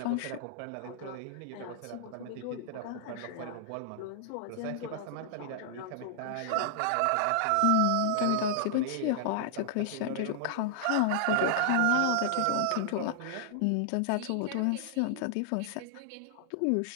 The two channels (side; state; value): both; different; correlation -0.01